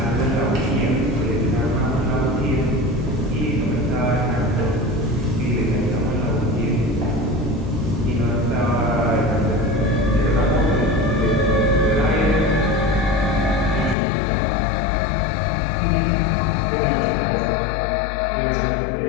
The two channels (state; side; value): drops out; right; at 14.0 s